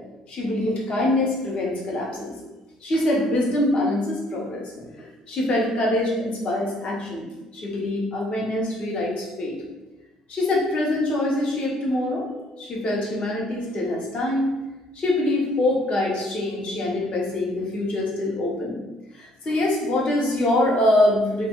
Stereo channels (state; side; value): normal; both; correlation 0.63